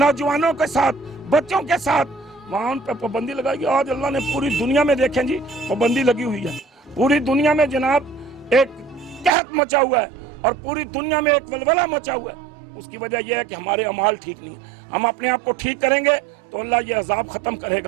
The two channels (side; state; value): left; drops out; at 9.3 s